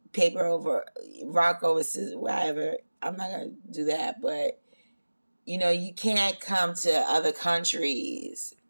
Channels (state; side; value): inverted; both; correlation -1.00